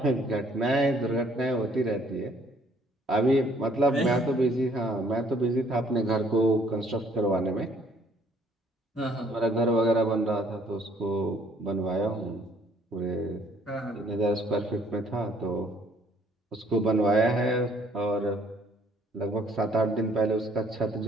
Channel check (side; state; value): both; normal; correlation 0.62